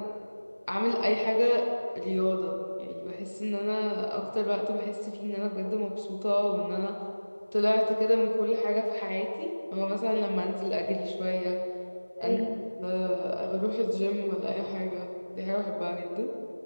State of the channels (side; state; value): both; inverted; correlation -1.00